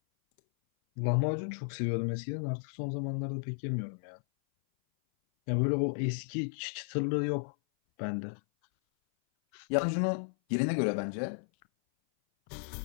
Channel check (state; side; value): silent; right; 55 dB below the other